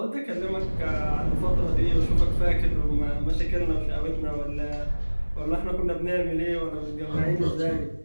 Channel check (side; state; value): both; inverted; correlation -1.00